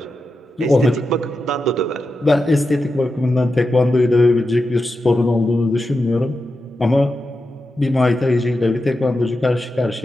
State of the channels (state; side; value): normal; both; correlation 0.89